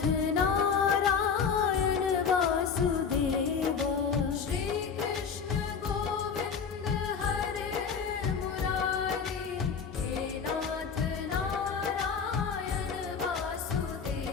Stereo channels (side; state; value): right; quieter; 6.2 dB